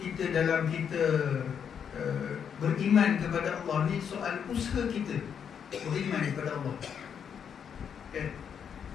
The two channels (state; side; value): quieter; right; 7.7 dB